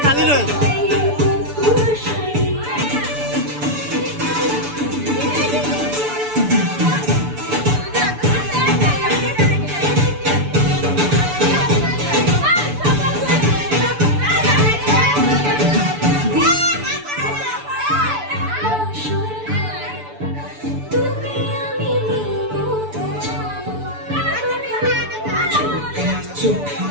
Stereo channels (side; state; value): left; late; 6.9 ms